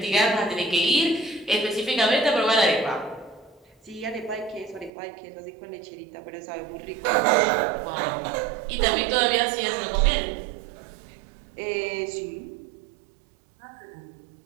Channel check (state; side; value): drops out; left; at 4.9 s